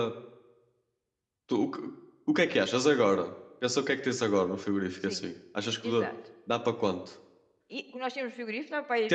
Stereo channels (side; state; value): both; identical; correlation 1.00